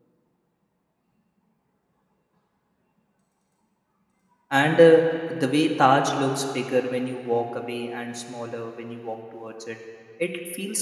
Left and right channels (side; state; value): both; identical; correlation 1.00